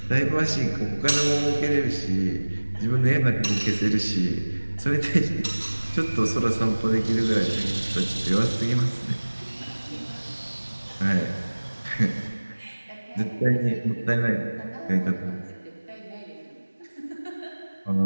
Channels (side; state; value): both; inverted; correlation -1.00